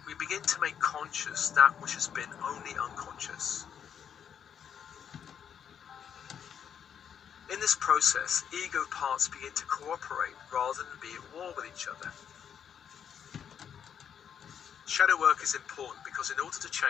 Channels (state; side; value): quieter; right; 8.2 dB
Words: We begin to make conscious that which has been only unconscious. In this process, ego parts begin to cooperate rather than be at war with each other. Shadow work is important because in order to